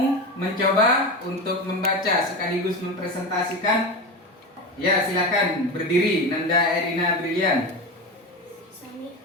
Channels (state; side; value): normal; both; correlation 0.22